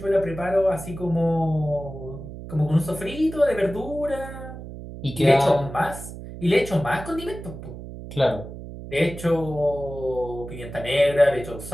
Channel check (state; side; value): noise; right; hum, 12 dB below the sound